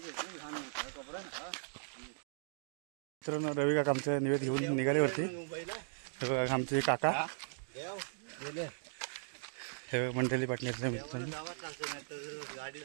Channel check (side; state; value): left; silent; digital silence